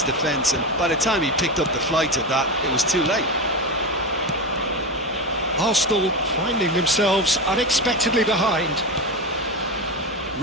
defence, and by the time he picked up the flight of that, it was too late. Arsenal finding themselves unexpectedly behind.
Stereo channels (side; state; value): both; normal; correlation 0.19